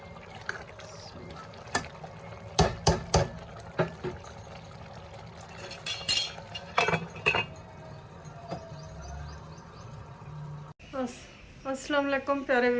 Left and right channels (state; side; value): identical; both; correlation 1.00